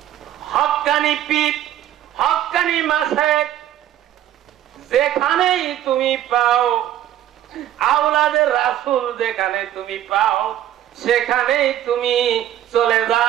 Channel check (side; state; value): left; quieter; 12.0 dB